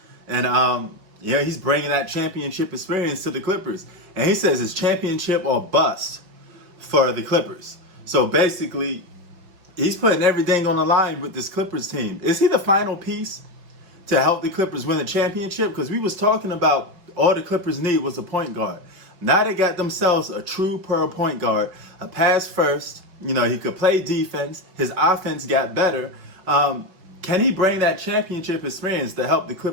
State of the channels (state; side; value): late; left; 5.4 ms